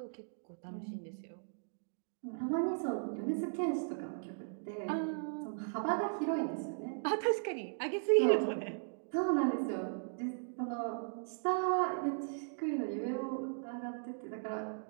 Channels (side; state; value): left; silent; digital silence